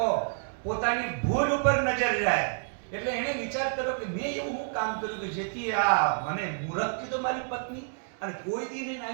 પોતાની ભૂલ ઉપર નજર જાય. એટલે એને વિચાર કર્યો કે મેં એવું હું કામ કર્યું કે જેથી આ મને મૂરખ કીધો મારી પત્ની, અને કોઈ દી નહીં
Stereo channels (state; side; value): silent; left; digital silence